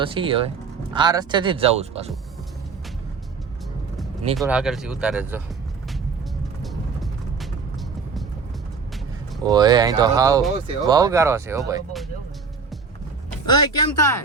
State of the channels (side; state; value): left; quieter; 5.1 dB